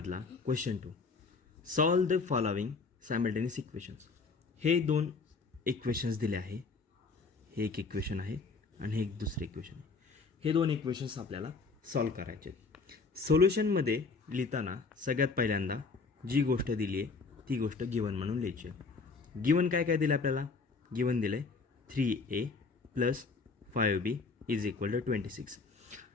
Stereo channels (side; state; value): right; quieter; 4.4 dB